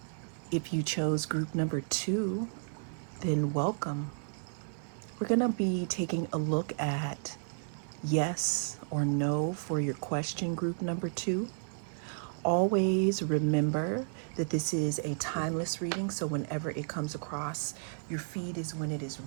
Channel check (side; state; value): left; silent; 56 dB below the other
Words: If you chose group number 2, then welcome. We're going to be taking a look at yes or no for your question, group number 2. Always remember that this is a timeless reading, so whenever it comes across your feed is when it is